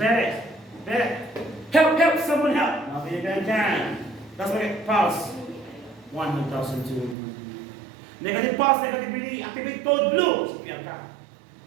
help, someone help. Okay, ganyan. Tapos pulse. 1,200. Negative pulse, negative breathing, activate code blue. Sipiyan ka.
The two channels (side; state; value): left; drops out; at 7.2 s